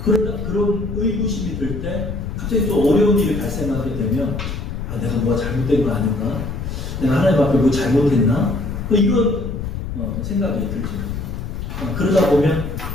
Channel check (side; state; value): left; noise; rumble, 6 dB below the sound